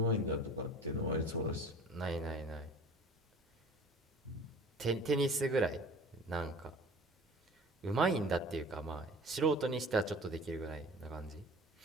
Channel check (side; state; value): both; normal; correlation 0.44